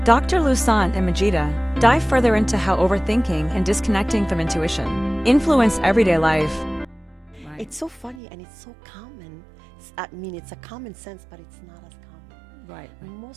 Dr. Louissaint and Majida dive further into how overthinking and disconnecting from intuition influence everyday life. Right. It's so funny and it's so common. I mean, it's a common sense, but it's not as common. Right.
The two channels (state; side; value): drops out; left; at 8.2 s